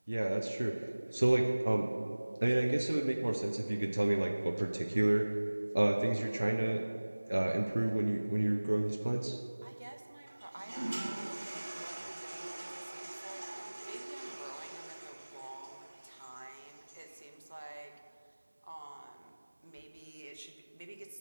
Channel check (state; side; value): inverted; both; correlation -1.00